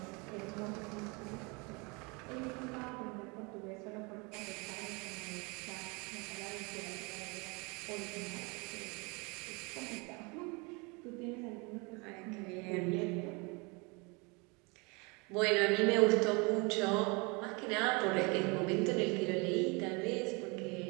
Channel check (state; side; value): quieter; left; 29.2 dB